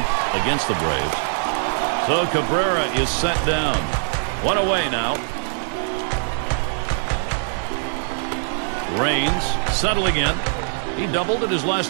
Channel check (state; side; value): silent; left; 64 dB below the other